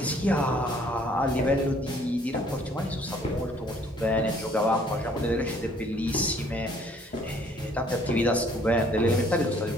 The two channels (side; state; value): both; normal; correlation 0.60